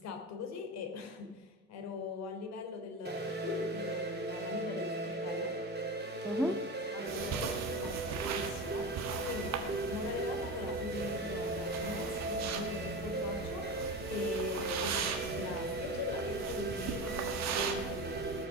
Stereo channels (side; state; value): both; normal; correlation 0.24